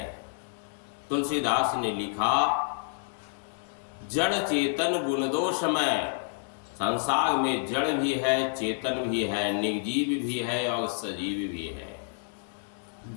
तुलसीदास ने लिखा, जड़ चेतन गुण दोषमय। संसार में जड़ भी है, चेतन भी है, निर्जीव भी है और सजीव भी है।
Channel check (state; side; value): silent; right; digital silence